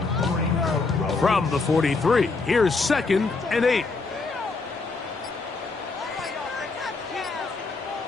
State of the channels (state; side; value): quieter; right; 3.9 dB